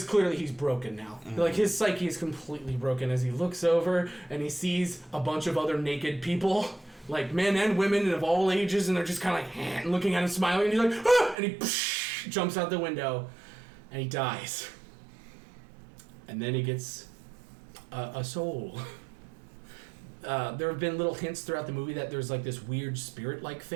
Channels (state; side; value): drops out; left; at 11.4 s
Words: clearly he's broken now. Mm-hmm. Like, his psyche is completely broken as he looks over and he sees a bunch of other naked people, like men and women and of all ages, and they're just kind of like looking at him, smiling, and he's like, ah! And he jumps out the window and he dies. And then he gets a soul. There have been little hints throughout the movie that there's like this weird spirit-like